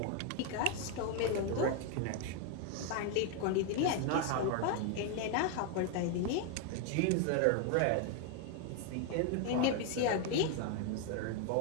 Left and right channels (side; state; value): both; different; correlation 0.01